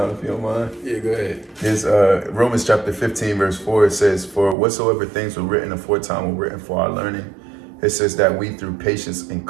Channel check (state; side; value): drops out; left; at 4.5 s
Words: if you don't mind. Yeah, go ahead. It's Romans chapter 15, verse 4. It says, "For whatsoever things were written aforetime were written for our learning." It says that we through patience and